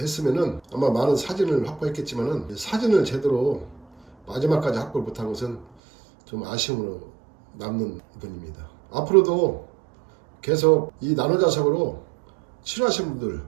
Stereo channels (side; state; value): left; drops out; at 5.7 s